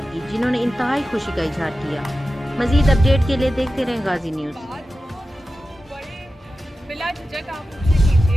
کی، جنہوں نے انتہائی خوشی کا اظہار کیا۔ مزید اپڈیٹ کے لیے دیکھتے رہیں غازی نیوز۔ بلا جھجک آپ مجھ سے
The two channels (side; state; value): both; normal; correlation 0.94